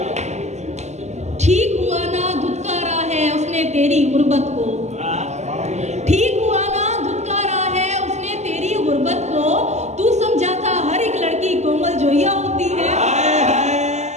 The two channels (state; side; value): late; left; 0.33 ms